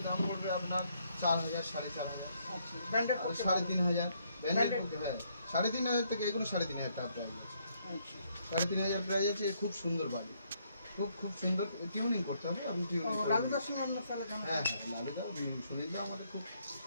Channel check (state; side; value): inverted; both; correlation -0.71